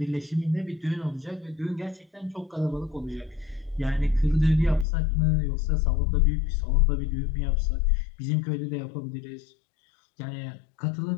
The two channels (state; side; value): drops out; right; at 4.9 s